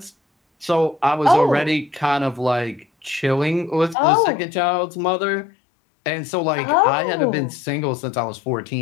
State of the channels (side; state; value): right; drops out; at 4.0 s